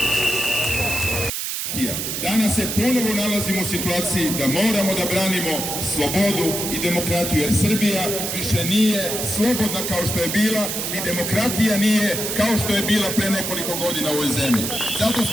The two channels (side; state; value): right; noise; hiss, 3 dB below the sound